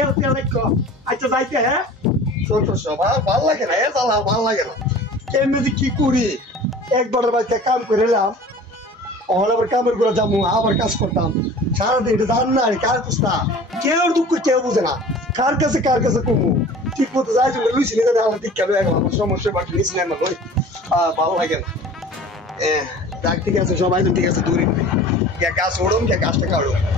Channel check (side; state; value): both; normal; correlation 0.43